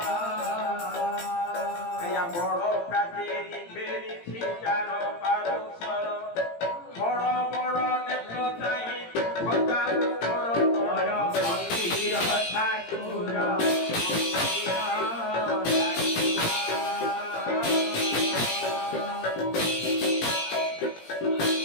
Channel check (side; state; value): right; late; 17 ms